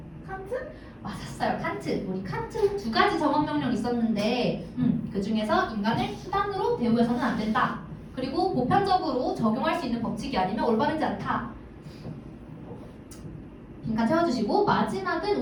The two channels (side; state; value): both; identical; correlation 1.00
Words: 칸트? 맞았어요. 칸트. 우리 칸트 두 가지 정언 명령 있었는데 그 중에서 인간을 수단으로 대우해서는 안 된다. 그리고 보편적으로 적용할 수 있는 법칙이 아니면 올바르지 않다. 빈칸 채워주시고